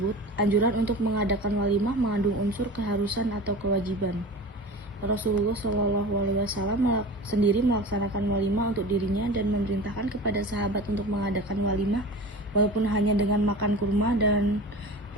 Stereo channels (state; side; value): normal; both; correlation 0.35